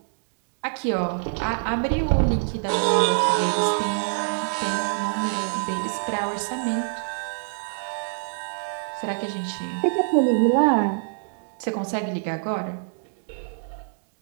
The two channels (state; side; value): silent; left; digital silence